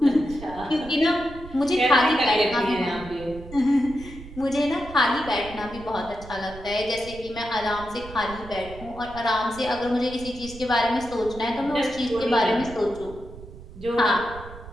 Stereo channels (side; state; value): right; noise; rumble, 15 dB below the sound